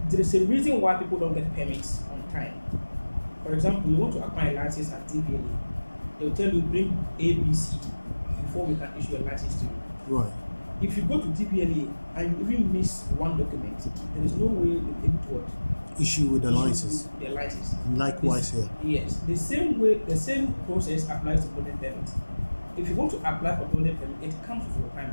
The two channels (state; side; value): inverted; both; correlation -1.00